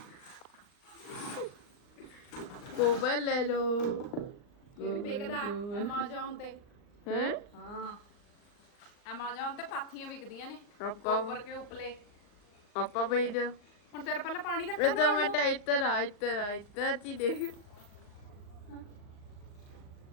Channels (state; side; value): late; right; 39 ms